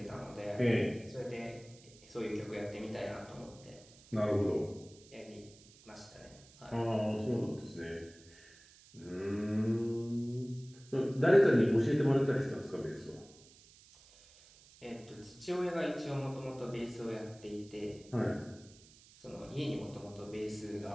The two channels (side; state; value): right; noise; hiss, 24 dB below the sound